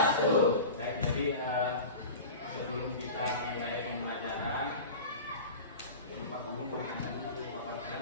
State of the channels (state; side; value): inverted; both; correlation -0.33